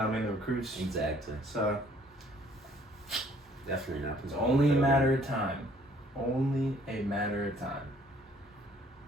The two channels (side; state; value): both; normal; correlation 0.60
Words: the recruits. Exactly. So, Definitely not. it's only a matter of time. Only a matter of time.